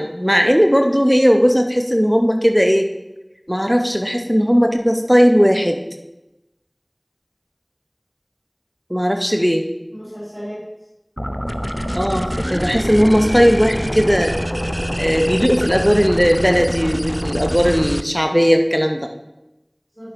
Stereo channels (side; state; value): both; identical; correlation 1.00